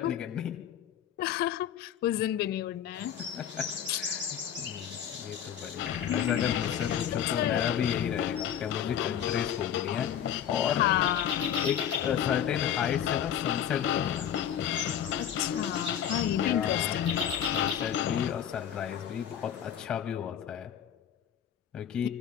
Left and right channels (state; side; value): quieter; right; 9.5 dB